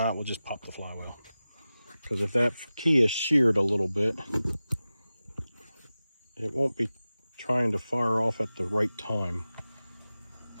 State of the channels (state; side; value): inverted; both; correlation -0.95